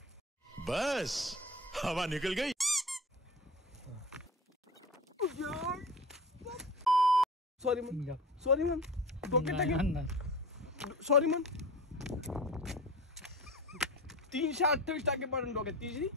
बस हवा निकल गई. सॉरी मन, सॉरी मन, डोक्यात टाकेल. सॉरी मन. 328 टाके पडून डोक्यात.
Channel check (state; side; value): normal; both; correlation 0.34